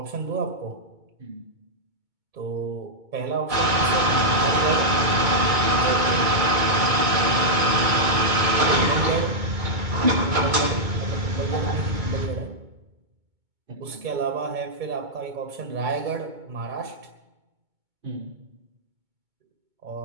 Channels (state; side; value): late; left; 2.2 ms